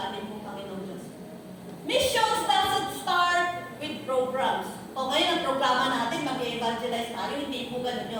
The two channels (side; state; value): both; identical; correlation 1.00